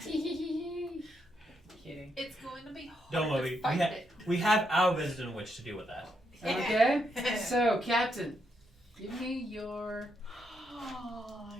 It's going to be hard Don't worry. to fight it. We have our resident witch to deal with that. Okay. So, Captain, give me your. Oh,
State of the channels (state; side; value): normal; both; correlation 0.79